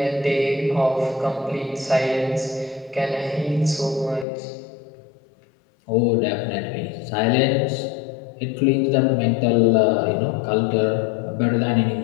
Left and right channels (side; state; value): right; drops out; at 4.2 s